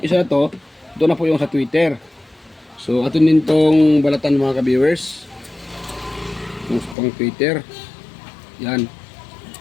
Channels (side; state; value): right; drops out; at 7.0 s